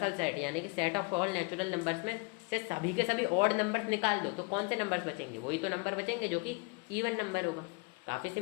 सेट यानी कि set of all natural numbers में से सभी के सभी ऑड नंबर्स निकाल दो, तो कौन से नंबर्स बचेंगे, वही तो नंबर बचेंगे जो कि इवन नंबर होगा। काफ़ी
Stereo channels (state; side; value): quieter; right; 30.5 dB